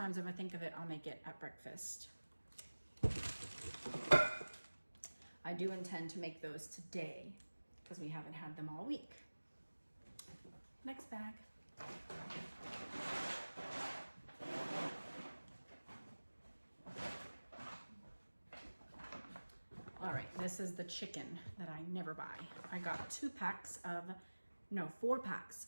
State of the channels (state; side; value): inverted; both; correlation -1.00